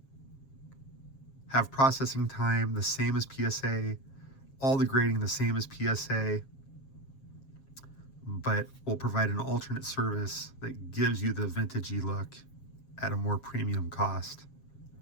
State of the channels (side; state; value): right; late; 7.4 ms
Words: have processing time the same as PSA, all the grading the same as PSA, but will provide an alternate service that gives you the vintagey look at a more premium cost.